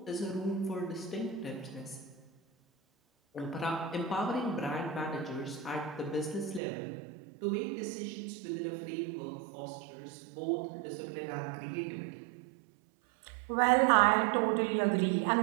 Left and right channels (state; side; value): drops out; left; at 6.6 s